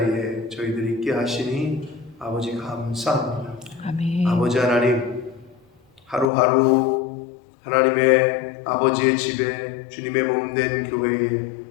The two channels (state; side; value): drops out; right; at 6.3 s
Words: 저희들 있게 하시니 아버지 감사합니다. 아멘. 아버지 하나님, 하루하루 하나님의 아버지의 집에 주님의 몸된 교회에